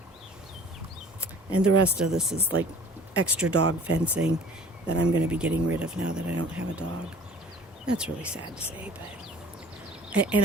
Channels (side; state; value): both; normal; correlation 0.48